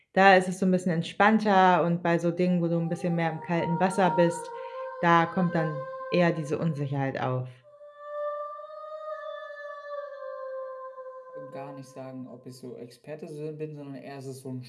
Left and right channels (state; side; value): identical; both; correlation 1.00